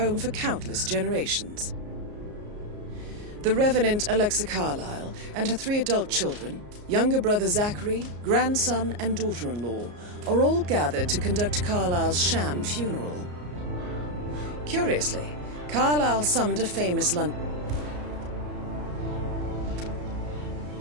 for countless generations. The Revenant Alexa Carlyle and her 3 adult children, younger brother Zachary, grandson and daughter-in-law, are all gathered to conduct Carlyle's sham funeral. Curiously, Carlyle summoned a famous London...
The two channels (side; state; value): left; late; 34 ms